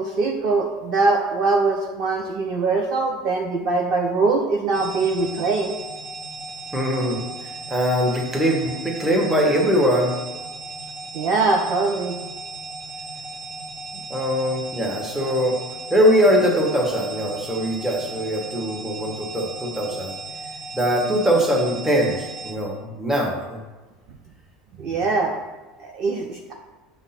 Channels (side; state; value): both; normal; correlation 0.46